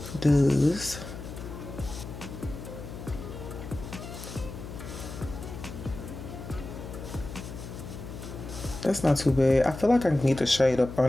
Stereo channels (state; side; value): noise; left; hum, 10 dB below the sound